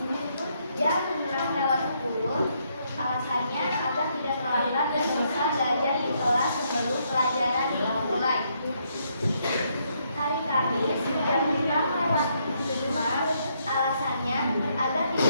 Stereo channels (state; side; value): inverted; both; correlation -0.74